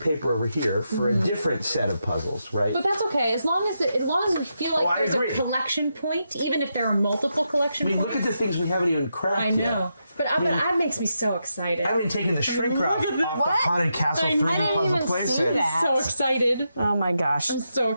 paper over here for a different set of puzzles, right? But that's okay, as long as we feel like I there's agree. a collection point, even if there are multiple collection I mean, points. look at the things we haven't even cracked I yet. know, but that makes me so excited. I haven't taken the shrink wrap off the What? Haunted Castle I 3D didn't puzzle even playset. see that. So excited! Oh my gosh. I'm so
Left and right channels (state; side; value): inverted; both; correlation -0.84